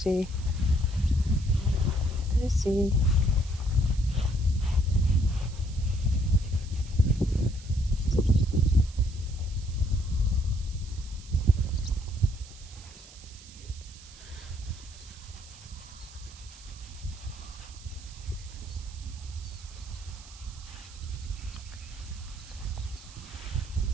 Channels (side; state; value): right; noise; hiss, 19 dB below the sound